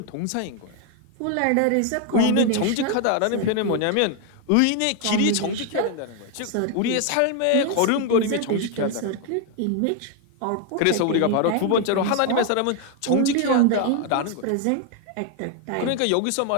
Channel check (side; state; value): both; different; correlation 0.01